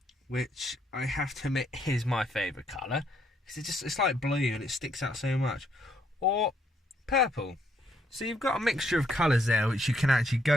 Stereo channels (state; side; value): normal; both; correlation 0.72